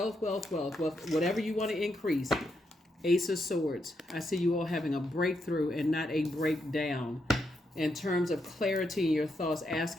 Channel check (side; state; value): both; normal; correlation 0.81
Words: you want to increase. Ace of Swords. I see you all having a breakthrough and not a breakdown. In terms of clarity in your thoughts,